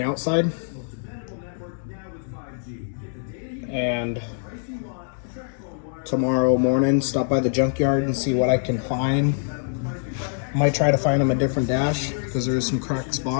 outside. And tomorrow morning, stop by the junkyard and see what I can find. Might try to find them a different dash because there's some cracked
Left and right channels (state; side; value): silent; right; digital silence